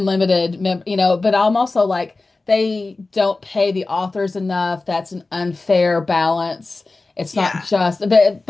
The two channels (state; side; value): quieter; right; 3.4 dB